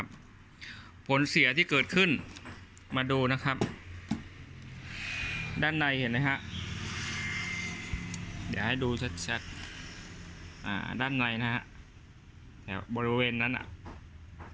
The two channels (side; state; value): both; identical; correlation 1.00